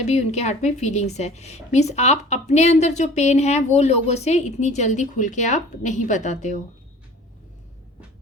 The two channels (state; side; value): normal; both; correlation 0.45